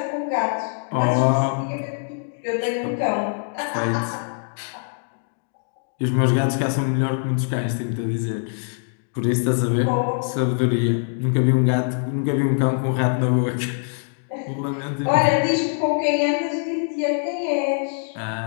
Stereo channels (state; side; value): silent; right; digital silence